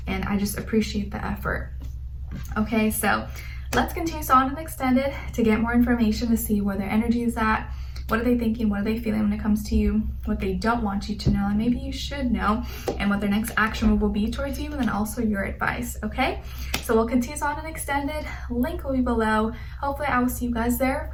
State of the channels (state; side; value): identical; both; correlation 1.00